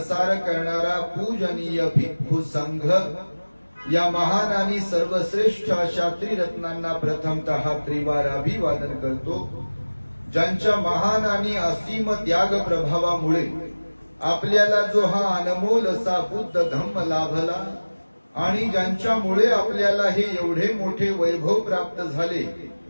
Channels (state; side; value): inverted; both; correlation -1.00